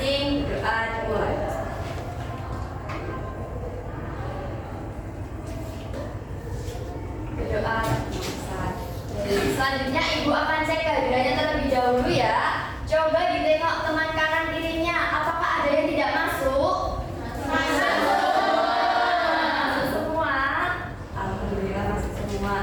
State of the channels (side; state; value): both; identical; correlation 1.00